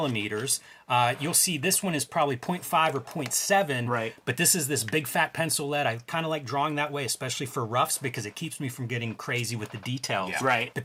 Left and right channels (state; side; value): identical; both; correlation 1.00